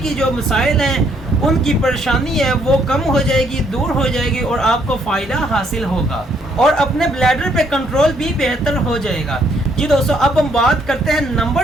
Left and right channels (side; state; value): both; normal; correlation 0.69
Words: جو مسائل ہیں ان کی پریشانی ہے وہ کم ہو جائے گی، دور ہو جائے گی، اور آپ کو فائدہ حاصل ہوگا، اور اپنے بلیڈر پہ کنٹرول بھی بہتر ہو جائے گا۔ جی دوستو، اب ہم بات کرتے ہیں